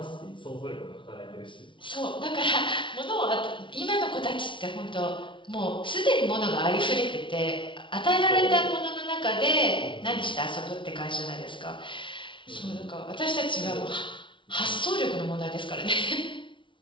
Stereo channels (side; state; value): right; late; 0.24 ms